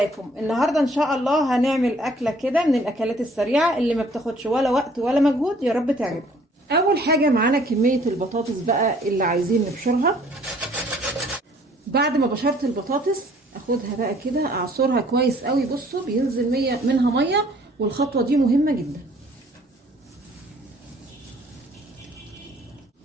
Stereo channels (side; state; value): both; normal; correlation 0.58